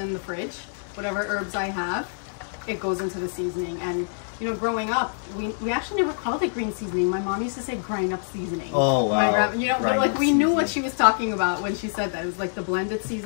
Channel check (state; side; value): silent; right; digital silence